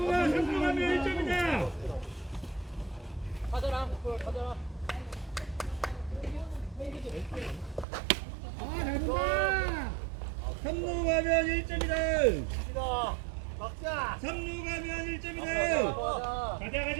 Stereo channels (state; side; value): drops out; left; at 7.9 s